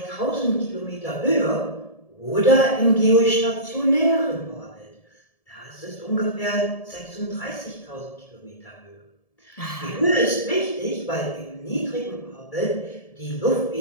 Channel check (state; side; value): late; right; 1.7 ms